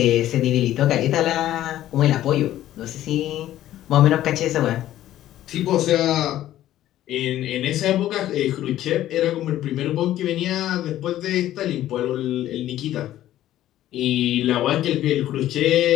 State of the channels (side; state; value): right; quieter; 13.3 dB